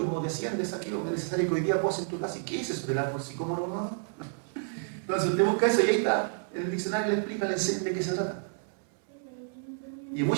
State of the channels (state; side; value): silent; left; 58 dB below the other